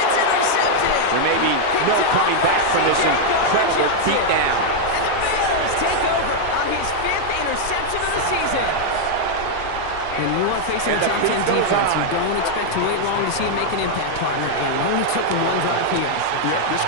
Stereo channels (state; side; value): different; both; correlation 0.00